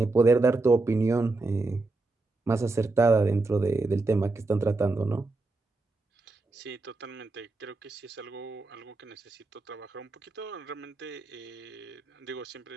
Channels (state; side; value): quieter; left; 3.3 dB